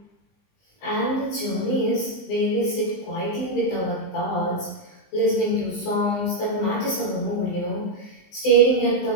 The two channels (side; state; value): right; late; 20 ms